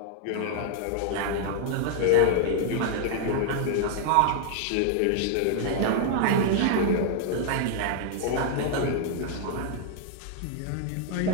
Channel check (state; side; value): different; both; correlation 0.00